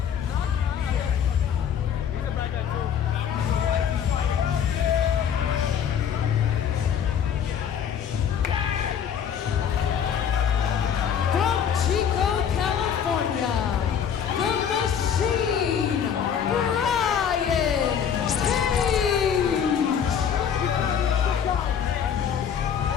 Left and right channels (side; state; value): right; quieter; 8.1 dB